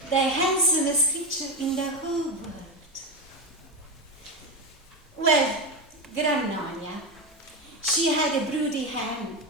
the handsomest creature in the whole world. Well, Grannonia, she had a broody hen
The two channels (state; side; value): normal; both; correlation 0.13